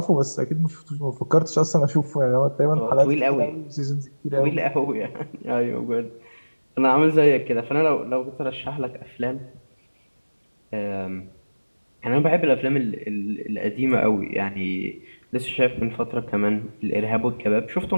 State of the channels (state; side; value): inverted; both; correlation -1.00